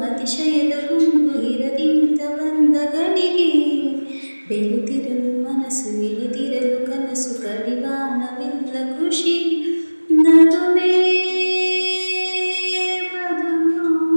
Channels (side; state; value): both; inverted; correlation -1.00